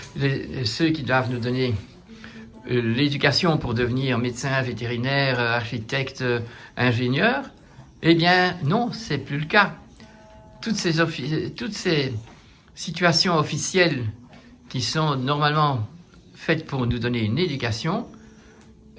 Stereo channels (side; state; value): both; identical; correlation 1.00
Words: ceux qui doivent nous donner l'éducation pour devenir médecin, vétérinaire, architecte, ingénieur, eh bien non, c'est plus le cas. Toutes ces situations officielles qui sont normalement faites pour nous donner une éducation,